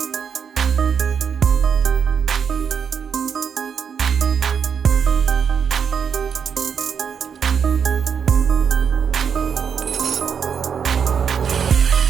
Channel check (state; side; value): quieter; left; 7.1 dB